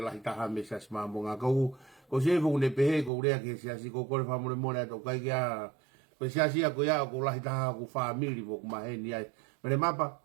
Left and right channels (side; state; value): left; drops out; at 3.1 s